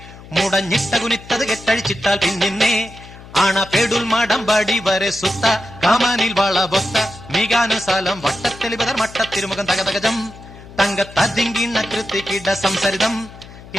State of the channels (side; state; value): left; noise; hum, 18 dB below the sound